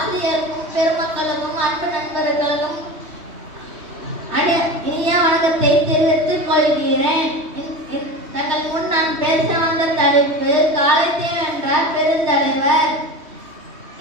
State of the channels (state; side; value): late; left; 3.1 ms